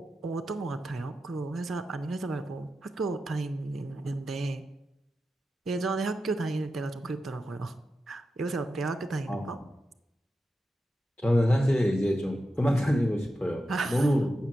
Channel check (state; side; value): normal; both; correlation 0.90